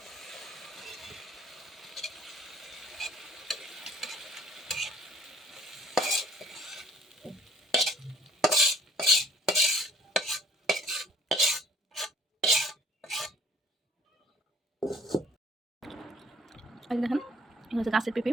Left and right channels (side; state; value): both; normal; correlation 0.56